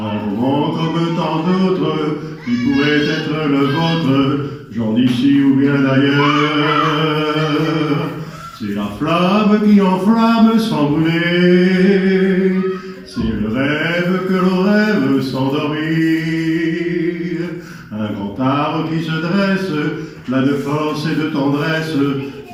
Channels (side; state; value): both; identical; correlation 1.00